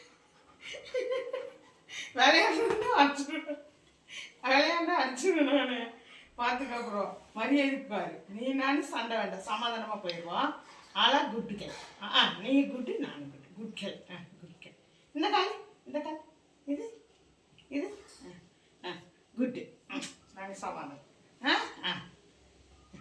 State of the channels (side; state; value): both; identical; correlation 1.00